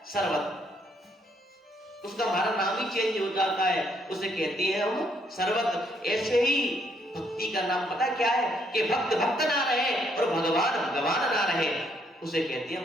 शरबत, उसका हमारा नाम ही चेंज हो जाता है, उसे कहते हैं हम शरबत। ऐसे ही भक्ति का नाम पता क्या है कि भक्त भक्त ना रहे और भगवान भगवान ना रहे, उसे कहते हैं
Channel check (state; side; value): normal; both; correlation 0.71